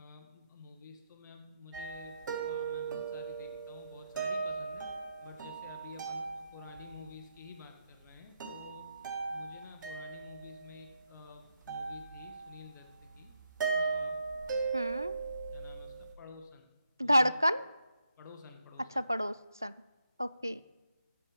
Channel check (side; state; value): both; inverted; correlation -0.82